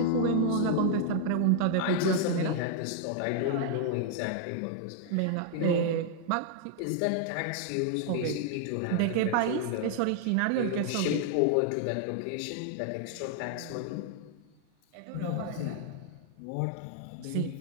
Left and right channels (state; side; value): different; both; correlation -0.01